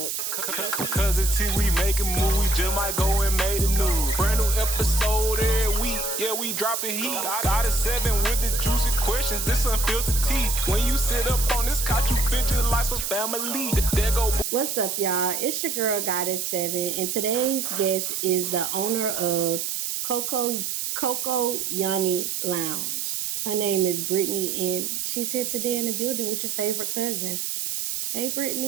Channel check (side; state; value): right; noise; hiss, 2 dB below the sound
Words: Cuz it's see we making move, we just might go and make the news. Brand new episode every week, yeah, we dropping heat. Got a 7 with the juicy questions, this unfiltered tea. When you sit up on this couch, you feel just like some family. There go. What's up, y'all? It's your girl, Goddess 7, and today's guest is the owner of Coco Lounge. Her name is Brittany, and she's here today in the building with your favorite cousin. Hey,